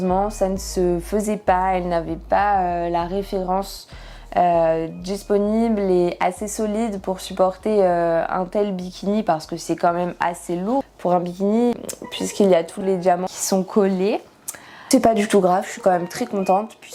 ça ne se faisait pas, elle n'avait pas la référence disponible et assez solide pour supporter un tel bikini parce que c'est quand même assez lourd pour un bikini puisqu'il y a tous les diamants qui sont collés. C'est pas du tout grave, je suis quand même très contente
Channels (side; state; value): both; identical; correlation 1.00